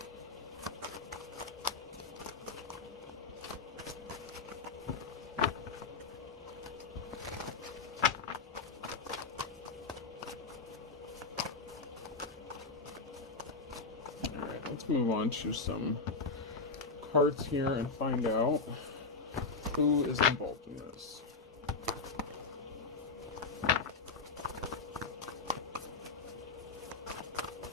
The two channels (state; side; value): quieter; right; 4.3 dB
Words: Let's move on to some cards here and find out who is involved in this.